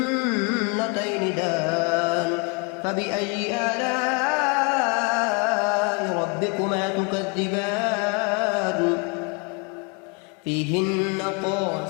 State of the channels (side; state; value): right; quieter; 32.5 dB